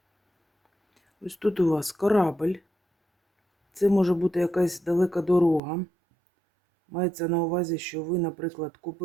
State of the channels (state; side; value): drops out; left; at 5.6 s